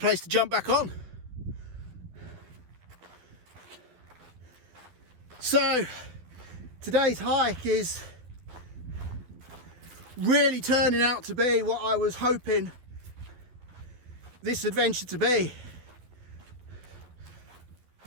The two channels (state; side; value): late; left; 12 ms